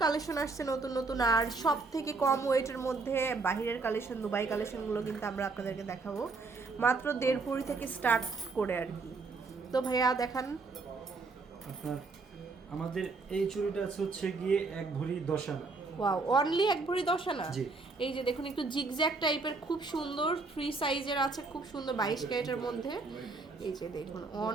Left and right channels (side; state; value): left; quieter; 4.0 dB